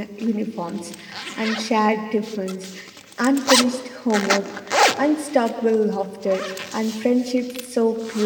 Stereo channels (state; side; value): identical; both; correlation 1.00